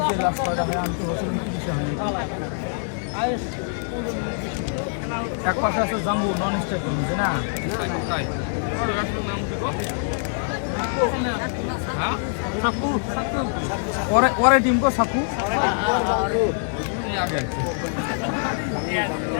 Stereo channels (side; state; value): right; silent; digital silence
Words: লাস্ট কয়টা হয় আমি তো হচ্ছে 29 হয়নি। এক পাশে আছে জাম্বু নন স্টপ বুঝে না? পরে টিম কো সাকু